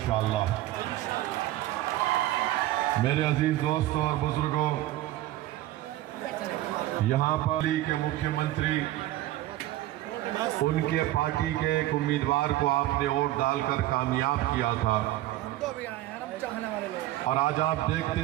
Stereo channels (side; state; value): left; quieter; 15.5 dB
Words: मेरे अजीज दोस्तों और बुजुर्गों, यहाँ पर के मुख्यमंत्री उनके पार्टी के एक उम्मीदवार को आपने वोट डालकर कामयाब किया था और आज आप देखते